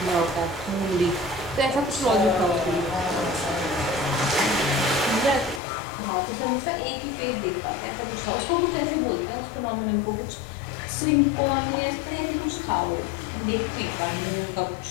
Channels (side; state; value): right; drops out; at 5.6 s